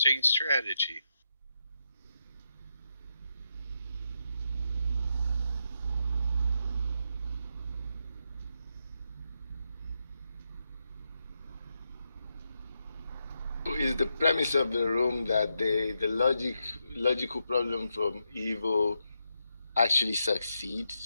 strategy. Is the premise of the room that the logical problem from evil actually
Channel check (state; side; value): inverted; both; correlation -0.84